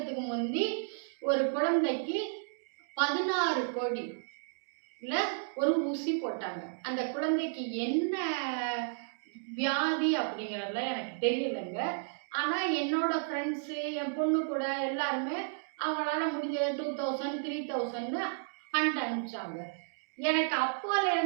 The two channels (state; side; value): silent; left; digital silence